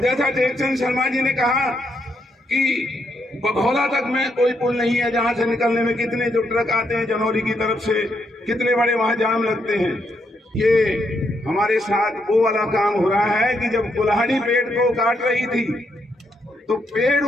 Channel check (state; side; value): normal; both; correlation 0.77